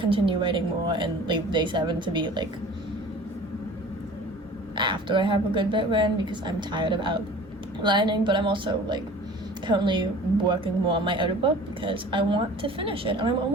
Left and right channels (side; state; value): both; normal; correlation 0.44